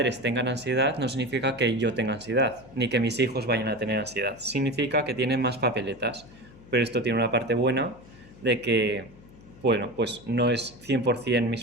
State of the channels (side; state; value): left; noise; hum, 22 dB below the sound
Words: tengan ansiedad no significa que yo tenga ansiedad, ni que mis hijos vayan a tener ansiedad. Significa que tienen más papeletas. Pero esto tiene una parte buena de que, bueno, pues no es 100%